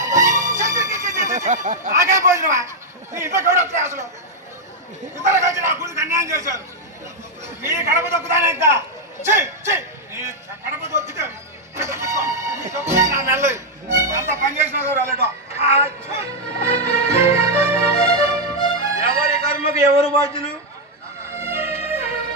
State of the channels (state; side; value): normal; both; correlation -0.01